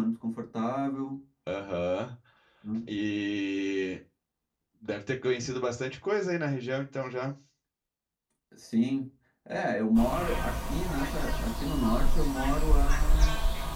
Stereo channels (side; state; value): both; identical; correlation 1.00